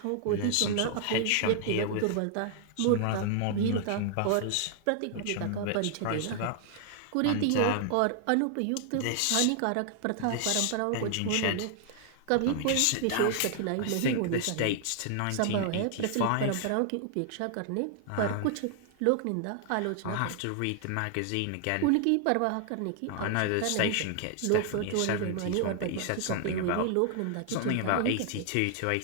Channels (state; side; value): different; both; correlation 0.00